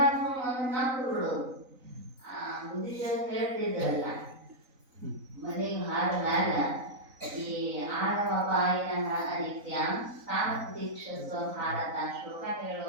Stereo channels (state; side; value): late; left; 4.0 ms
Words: ಒಂದು ನಕ್ಕು ಬಿಡೋದು. ಬುದ್ಧಿಜರು ಹೇಳ್ತಿದ್ರಲ್ಲ, ಮನೆಗೆ ಹಾರ ಮ್ಯಾಲ ಈ ಆಳವಪಾಯಿನ ಅನಿತ್ಯ ತಾಮದೀಕ್ಷಸ್ವ ಭಾರತ ಶ್ಲೋಕ